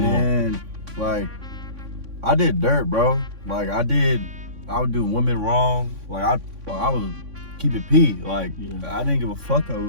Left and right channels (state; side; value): late; left; 3.6 ms